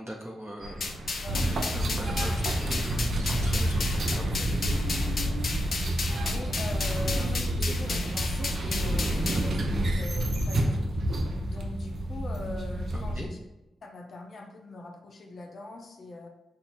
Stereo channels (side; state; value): both; normal; correlation 0.86